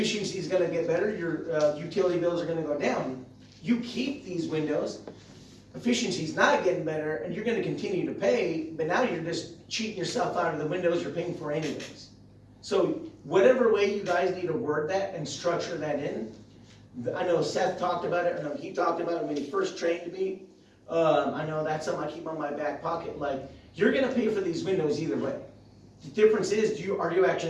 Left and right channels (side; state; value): both; identical; correlation 1.00